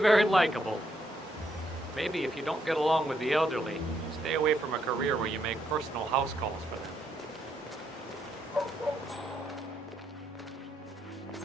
likable. Maybe if you don't get along with the elderly, stay away from a career where you make personal house calls for them.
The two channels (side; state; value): both; normal; correlation 0.75